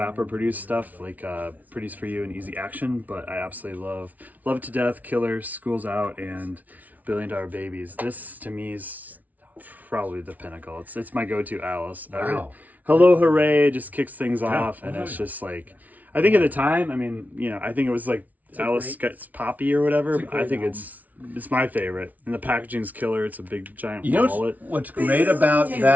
produced stuff, like Pretty's For You and Easy Action, but I absolutely love It to Death, Killers, School's Out, and $1 Billion Babies. This, to me, is probably the pinnacle. It's my go-to Alice. Wow. Hello Hooray just kicks things off, and it's just like, I think at the time, I think it was like Alice gets poppy or whatever, but I think it's my favorite. And the packaging's killer. It's a big giant wallet. What's great about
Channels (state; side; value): late; left; 0.075 ms